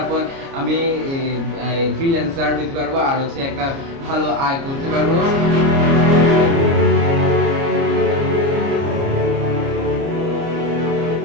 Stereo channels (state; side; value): late; left; 29 ms